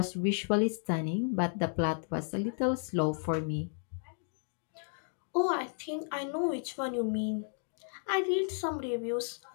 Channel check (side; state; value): right; silent; 56 dB below the other